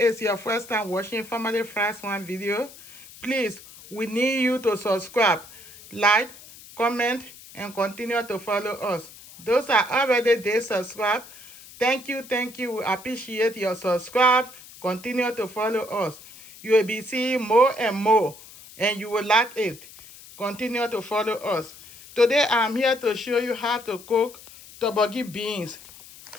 your first time watching Family First One video, please, we need you to subscribe, like, comment, and continue to follow us. Those are already there subscribed. Thank you. We appreciate your subscribe. Continue to follow us. You will be seeing more and more, and you will like it. Continue to follow us. Today I'm here to show you how to cook Torborgee beans.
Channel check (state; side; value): noise; left; hiss, 19 dB below the sound